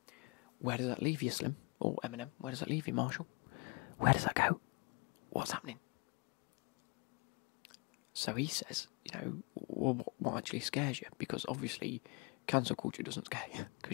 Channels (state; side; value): quieter; right; 30.3 dB